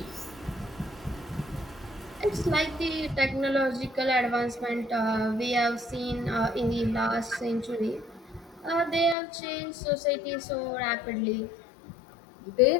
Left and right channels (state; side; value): drops out; right; at 9.2 s